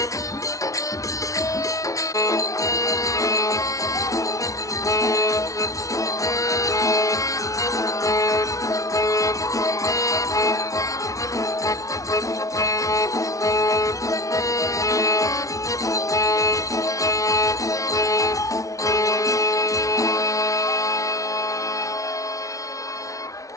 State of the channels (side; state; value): right; late; 0.16 ms